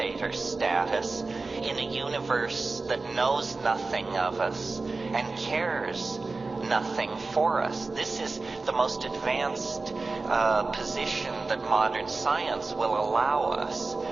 status in a universe that knows nothing of us and cares nothing for us. This is the most advanced position that modern science will allow us.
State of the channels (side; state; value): left; quieter; 3.7 dB